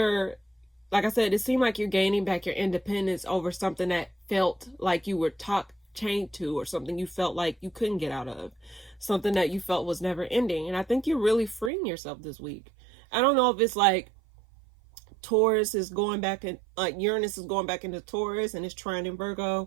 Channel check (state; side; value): drops out; left; at 11.7 s